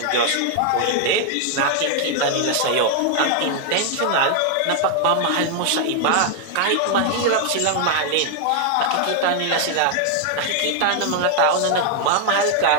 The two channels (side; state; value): both; different; correlation 0.00